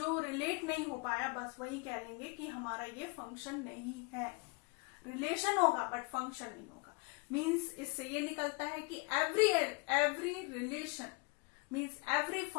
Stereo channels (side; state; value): right; quieter; 30.3 dB